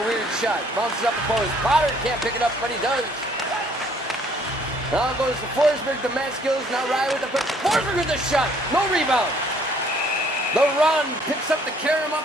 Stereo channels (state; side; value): normal; both; correlation 0.61